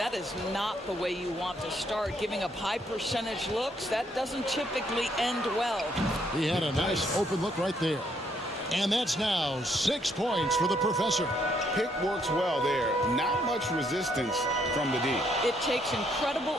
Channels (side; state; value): both; normal; correlation 0.71